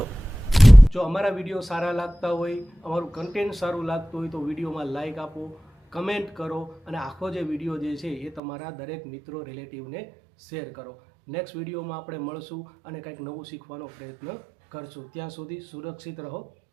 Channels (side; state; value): left; drops out; at 8.4 s